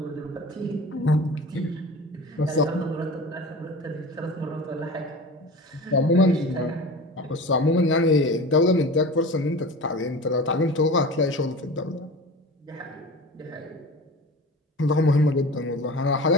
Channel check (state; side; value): normal; both; correlation 0.35